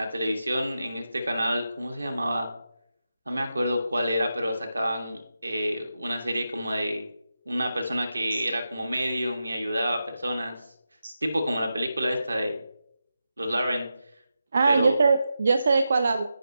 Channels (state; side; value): inverted; both; correlation -0.89